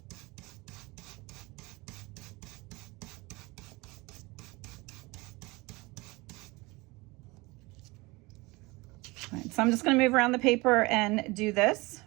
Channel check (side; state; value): left; quieter; 23.6 dB